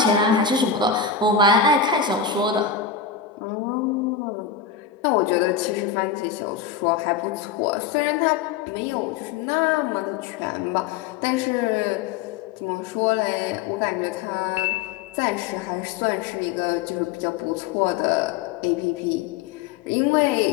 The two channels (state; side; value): quieter; right; 7.2 dB